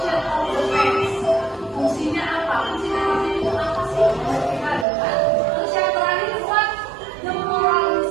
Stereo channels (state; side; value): drops out; left; at 4.9 s